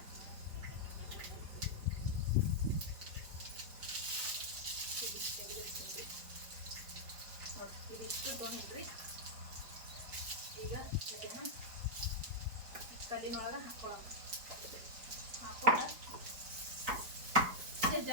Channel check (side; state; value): left; late; 4.6 ms